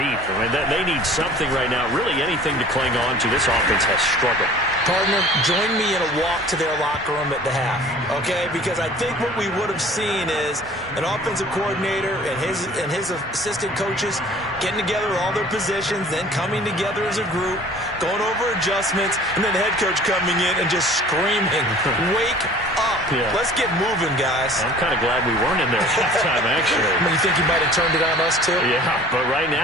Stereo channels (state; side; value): normal; both; correlation 0.48